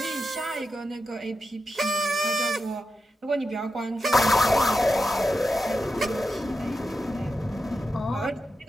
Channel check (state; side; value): normal; both; correlation 0.88